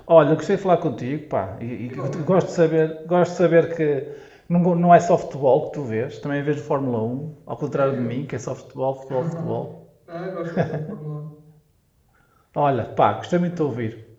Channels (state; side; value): identical; both; correlation 1.00